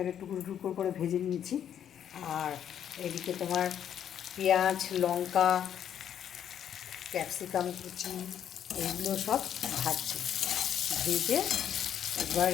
টুকরো টুকরো করে ভেজে নিয়েছি। আর এদিকে তোমার পেঁয়াজ, লঙ্কা, ক্যাপসিকাম কুচি এগুলো সব ভাজছি। ভেজে এবার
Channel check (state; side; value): quieter; right; 9.5 dB